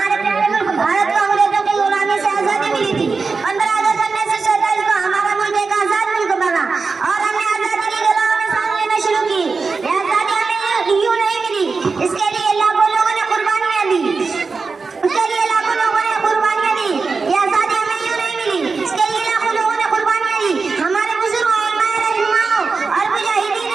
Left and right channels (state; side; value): quieter; left; 4.5 dB